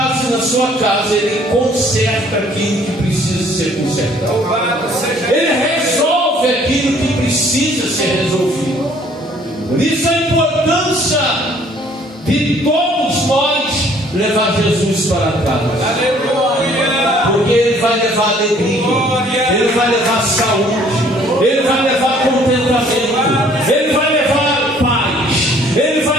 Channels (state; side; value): normal; both; correlation 0.58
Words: e na sua casa, ele conserta aquilo que precisa ser consertado. Ele resolve aquilo que precisa ser resolvido. Por isso a importância de todos nós levar Jesus para casa. Aleluia. Porque ele vai levar alegria, ele vai levar saúde, ele vai levar contentamento, ele vai levar paz, ele